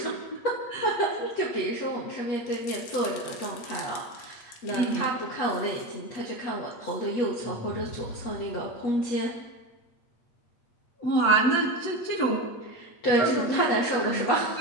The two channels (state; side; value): late; right; 8.4 ms